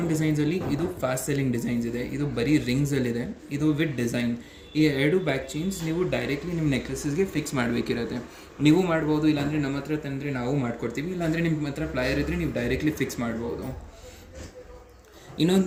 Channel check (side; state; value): both; identical; correlation 1.00